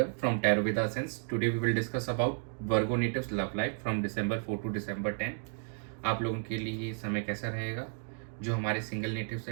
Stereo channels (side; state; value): left; silent; 56 dB below the other